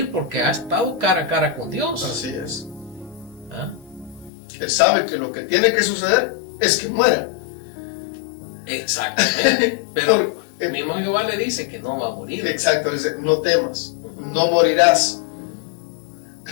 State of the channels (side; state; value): right; drops out; at 4.3 s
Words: porque ha estado cara a cara con Dios. Así es. ¿Ah? Él sabe que lo que tiene que suceder es que muera. Exactamente. Pero el mismo Jehová le dice que no va a morir. Exacto, dice, no temas. no morirás.